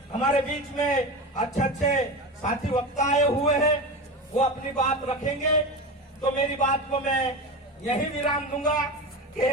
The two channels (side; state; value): both; normal; correlation 0.25